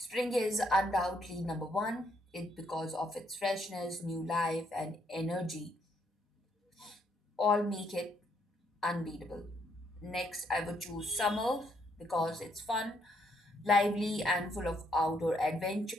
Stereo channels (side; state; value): both; normal; correlation 0.72